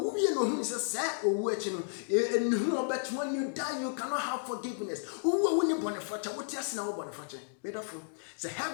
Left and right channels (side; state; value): right; silent; digital silence